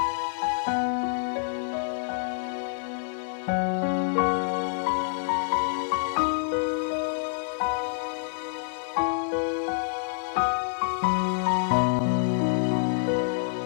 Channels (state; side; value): silent; right; 60 dB below the other